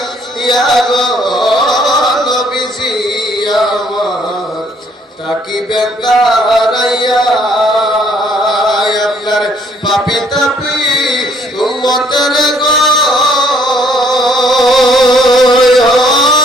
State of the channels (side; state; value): both; normal; correlation 0.64